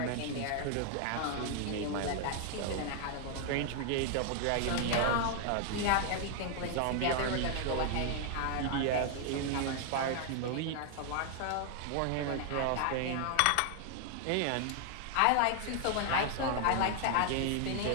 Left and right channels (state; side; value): different; both; correlation 0.00